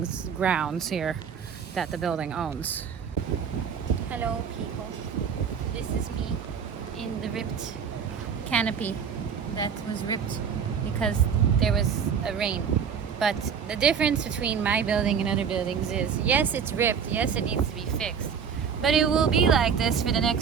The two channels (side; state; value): left; quieter; 7.0 dB